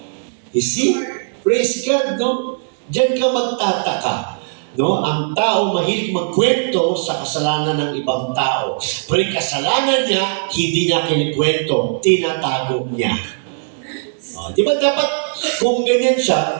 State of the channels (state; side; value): silent; left; digital silence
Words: You see? Praise God, no? Diyan ka magtataka. No, ang tao mahilig magkwento sa kasalanan ng ibang tao. Pero yung kasalanan niya, hindi niya kinikwento, tinatago niya. Di ba dapat, kung ganyan siya,